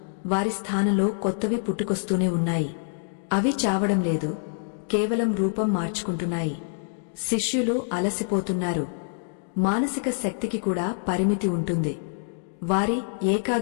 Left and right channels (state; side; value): silent; right; digital silence